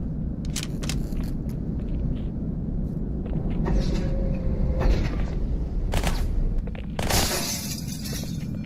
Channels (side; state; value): both; identical; correlation 1.00